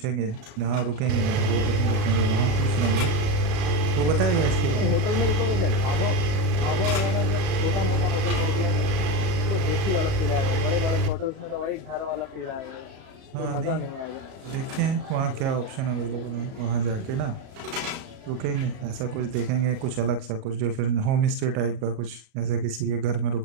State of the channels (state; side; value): late; left; 37 ms